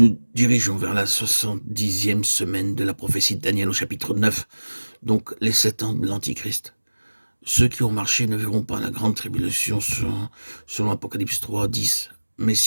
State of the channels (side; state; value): both; inverted; correlation -1.00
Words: dirigeons vers la 70e semaine de la prophétie de Daniel au chapitre 9, donc les 7 ans de l'Antichrist. Ceux qui ont marché ne verront pas la grande tribulation selon Apocalypse 3, 10. Mais